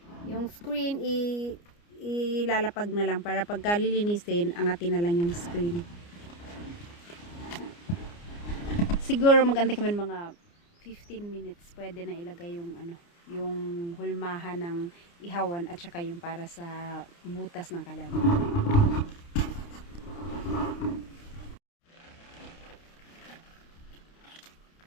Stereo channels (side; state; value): right; late; 29 ms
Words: Yung screen ilalapag na lang para pagka lilinisin, angatin na lang yung screen. siguro magantay kami ng mga 15 minutes. Pwede na ilagay yung ano, yung hulmahan ng ihawan at saka yung para sa butas ng kalan.